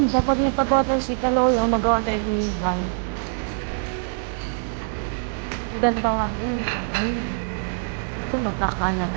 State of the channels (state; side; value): silent; left; digital silence